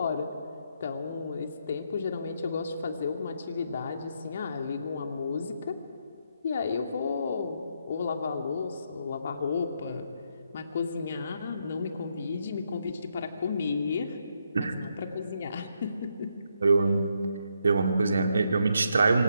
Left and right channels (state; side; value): inverted; both; correlation -0.78